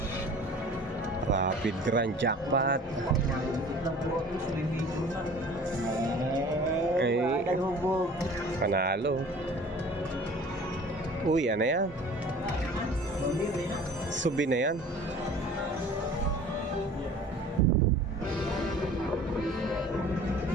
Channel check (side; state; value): both; normal; correlation 0.46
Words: Rapid Grand Jackpot. Ay, panalo. Uy, ano yan? Subi na yan.